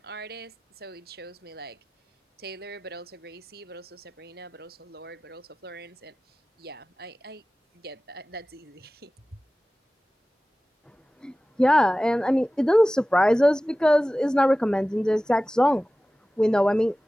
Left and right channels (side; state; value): both; normal; correlation 0.96